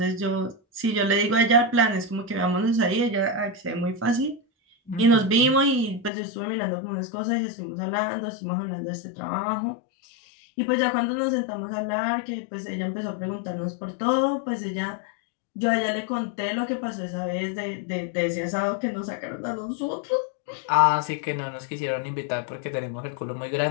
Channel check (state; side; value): drops out; right; at 6.1 s